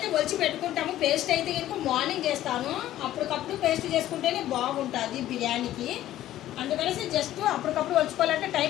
ఒలిచి పెట్టుకుంటాము. పేస్ట్ అయితే ఇంకా మార్నింగ్ చేస్తాను. అప్పటికప్పుడు పేస్ట్ చేసుకుంటేనే బాగుంటుంది బిర్యానీకి. అందుకనేసి జస్ట్ అప్పటికప్పుడు వచ్చుకోవాలంటే టైం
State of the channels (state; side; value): quieter; right; 13.5 dB